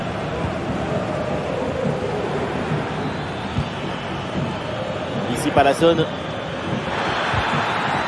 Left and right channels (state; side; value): identical; both; correlation 1.00